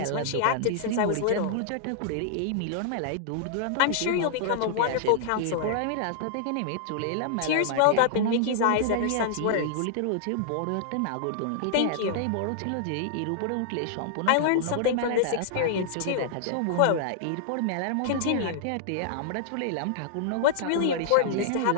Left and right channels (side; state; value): both; different; correlation -0.01